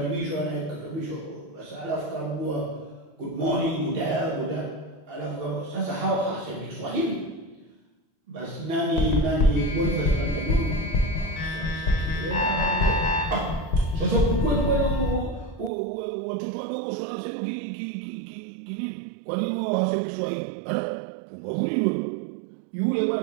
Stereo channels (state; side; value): drops out; left; at 15.7 s